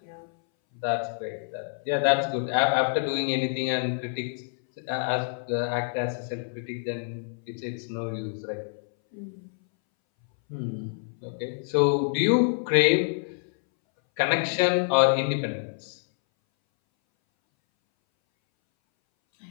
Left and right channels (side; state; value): right; silent; 60 dB below the other